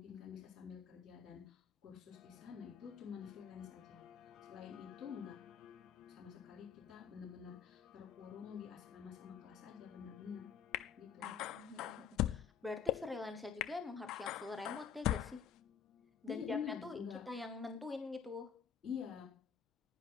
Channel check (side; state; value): right; quieter; 7.9 dB